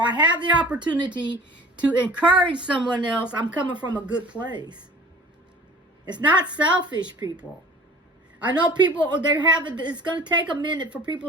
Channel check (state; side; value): normal; both; correlation 0.46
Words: have the opportunity to encourage someone else, I'm coming from a good place. It's not selfish, people. I know people, it's going to take a minute for